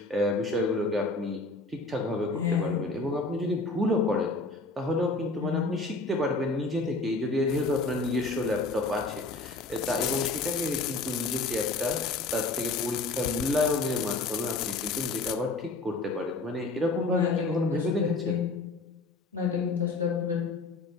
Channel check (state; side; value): quieter; right; 3.3 dB